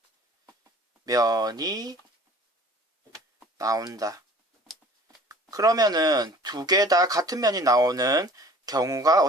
면이 나온다. 그러면은 2개 다 같은 면이 나오는 경우가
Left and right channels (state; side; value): normal; both; correlation 0.48